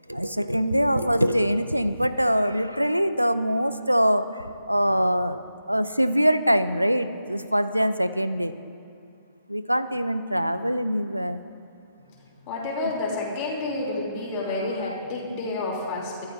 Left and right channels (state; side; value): inverted; both; correlation -0.89